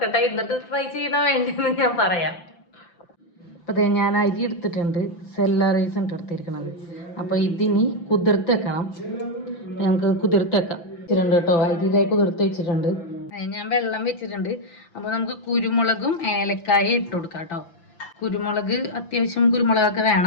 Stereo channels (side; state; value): right; late; 5.9 ms